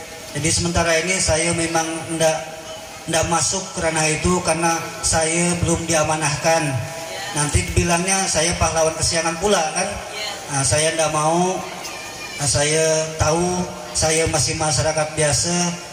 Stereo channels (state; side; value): identical; both; correlation 1.00